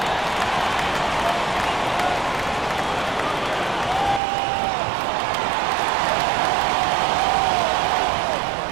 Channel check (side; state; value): left; drops out; at 4.2 s